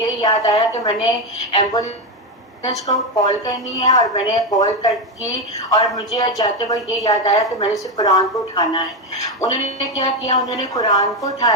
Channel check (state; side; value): normal; both; correlation 0.10